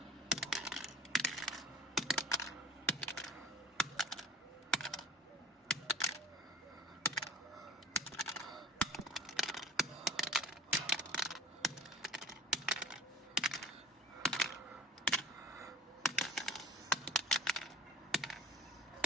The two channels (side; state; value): both; normal; correlation 0.41